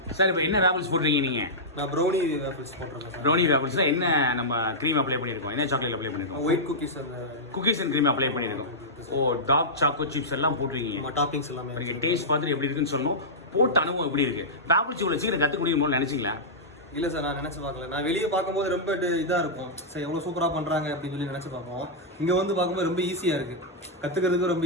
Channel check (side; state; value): both; normal; correlation -0.11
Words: சார் இப்போ என்ன வேஃபிள்ஸ் போடுறீங்க நீங்கள்? நான் ப்ரௌனி வேஃபிள்ஸ் போடுறேன். ப்ரௌனி வேஃபிள்ஸில் என்ன நம்ம க்ரீம் அப்ளை பண்ணியிருக்கோம்? என்ன சாக்லேட் அப்ளை பண்ணியிருக்கோம்? White cookies and cream apply பண்ணியிருக்கோம். ஓ, டார்க் சாக்கோ சிப்ஸ் எல்லாம் போட்டிருக்கீங்க. டாப்பிங்ஸ் எல்லாமே நீங்கள் டேஸ்ட் பார்த்துட்டு எப்படி இருக்குன்னு சொல்லணும். போட்ட அனுபவம் எப்படி இருக்குது? வேஃபிள்ஸ் இவ்வளோ சீக்கிரம் கற்றுக்க முடியுமோ நினச்சிங்களா? இல்லை சார், நான் நினச்சி பார்க்கல. நான் வெளியே பார்க்கும்போது ரொம்ப இதாக இருக்கும் சார், எவ்வளோ சூப்பராக பண்ணுறாங்க அப்படின்னு சொல்லி நினச்சி பார்ப்போம். இங்கே வந்து பார்க்கும்போது ரொம்ப ஈஸியாக இருக்குது, கற்றுக்கிறதுக்கு ரொம்ப